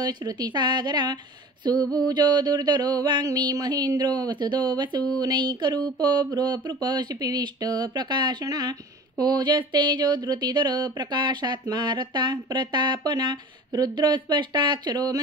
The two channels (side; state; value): both; normal; correlation 0.40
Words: श्रुतिसागरः सुभुजो दुर्धरो वाङ्मी महेन्द्रो वसुदो वसुनैकरूपो भ्रुपशिपिविष्ट प्रकाशना ओजस्तेजो धृतिधर प्रकाशात्मा रता प्रतापना रुद्रस्पष्टाक्षरो